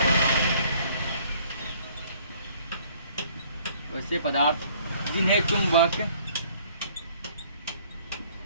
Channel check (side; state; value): both; inverted; correlation -0.58